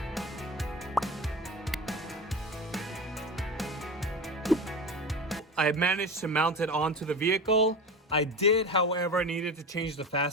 I managed to mount it onto the vehicle. I did, however, needed to change the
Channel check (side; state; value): both; normal; correlation 0.28